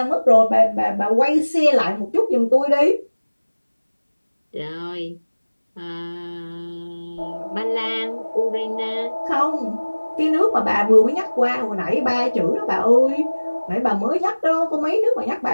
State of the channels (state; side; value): inverted; both; correlation -1.00